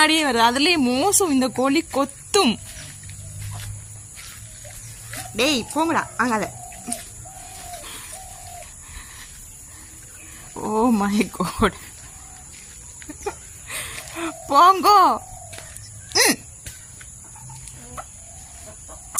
வருது. அதுலேயே மோசம், இந்த கோழி கொத்தும். டேய் போங்கடா அங்கால. ஓ மை காட், போங்கோ.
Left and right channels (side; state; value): both; identical; correlation 1.00